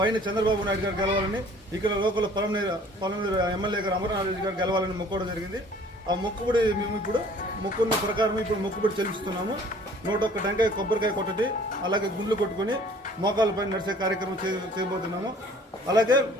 చంద్రబాబు నాయుడు గారు గెలవాలని, ఇక్కడ లోకల్ పొలంనేరు ఎమ్మెల్యే గారు అమర్నాథ్ రెడ్డి గారు గెలవాలని మొక్కోవడం జరిగింది. ఆ మొక్కుబడి మేము ఇప్పుడు మొక్కున్న ప్రకారం ఇప్పుడు మొక్కుబడి చెల్లిస్తున్నాము. 101 టెంకాయ కొబ్బరికాయ కొట్టటి, అలాగే గుండ్లు కొట్టుకొని మోకాళ్ళపై నడిచే కార్యక్రమం చేయబోతున్నాము. అలాగే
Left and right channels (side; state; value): both; normal; correlation 0.53